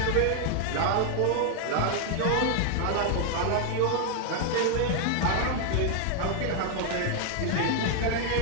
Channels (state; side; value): different; both; correlation 0.00